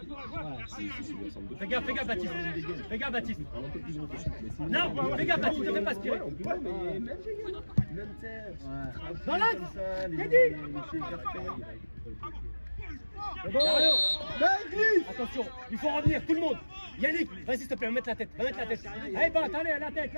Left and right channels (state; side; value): inverted; both; correlation -1.00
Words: Fais gaffe, Baptiste. Non, fais gaffe, Baptiste, ne fais pas aspirer. Dans l'axe. T'es dit. Attention, il faut revenir, tout le monde. Yannick, vas-y s'il te plaît, va mettre la tête. Allez, allez, la tête.